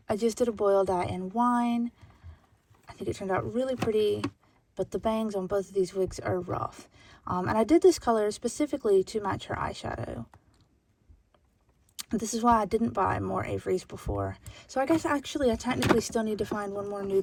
did a boil dye in wine. I think it turned out really pretty, but the bangs on both of these wigs are rough. And I did this color specifically to match her eyeshadow. This is why I didn't buy more Avery's before. So I guess actually I technically still need to find one more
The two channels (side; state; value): both; identical; correlation 1.00